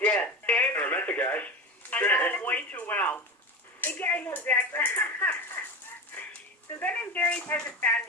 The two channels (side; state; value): both; normal; correlation 0.27